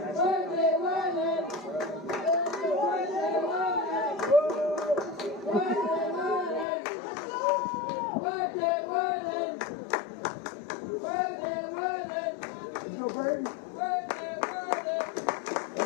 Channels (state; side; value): drops out; right; at 6.7 s